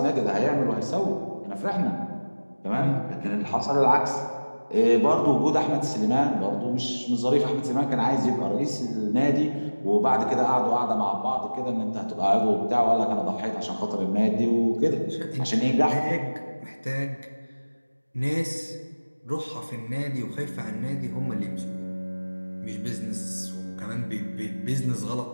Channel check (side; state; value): both; inverted; correlation -1.00